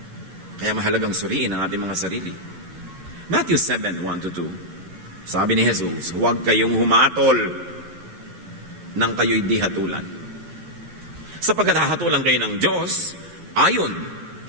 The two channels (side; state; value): left; late; 11 ms